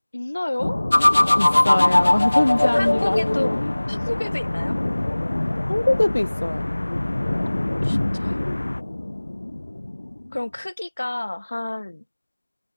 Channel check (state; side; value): inverted; both; correlation -1.00